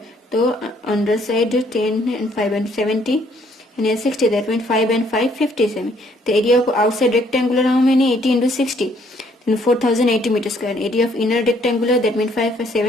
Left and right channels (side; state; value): both; normal; correlation 0.65